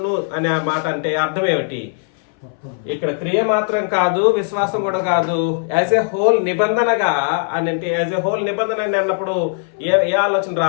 అనే మాట అంటే అర్థం ఏమిటి? ఇక్కడ క్రియ మాత్రం కాదు, విశ్వాసం కూడా కాదు, యాజ్ ఎ హోల్ నిబంధనగా అని అంటే యాజ్ ఎ హోల్ నిబంధన అన్నప్పుడు ఏ ఆలోచన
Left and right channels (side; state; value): right; silent; 63 dB below the other